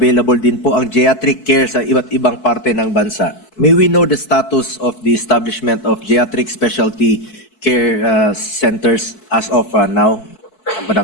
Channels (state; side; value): late; right; 4.6 ms